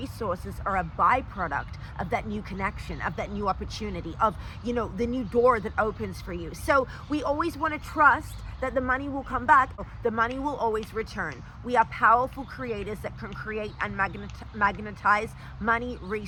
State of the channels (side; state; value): both; identical; correlation 1.00